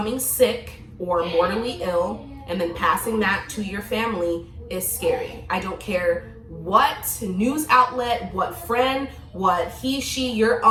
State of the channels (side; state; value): both; identical; correlation 1.00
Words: sick or mortally ill and then passing that to your family is scary. I don't care what news outlet, what friend, what he, she, your